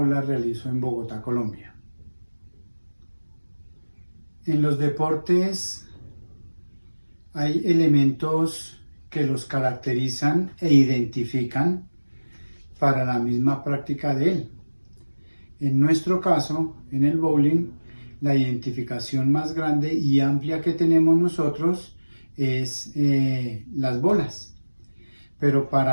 la realizo en Bogotá, Colombia. En los deportes hay elementos que los caracterizan e identifican para la misma práctica de él. En nuestro caso, en el bowling, la identificación más grande y amplia que tenemos nosotros es las bolas. Pero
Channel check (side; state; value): both; inverted; correlation -1.00